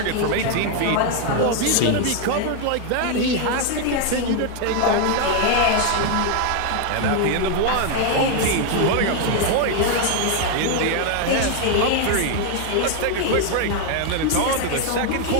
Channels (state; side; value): different; both; correlation 0.01